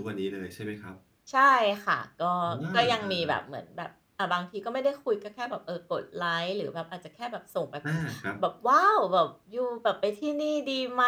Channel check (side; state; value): both; identical; correlation 1.00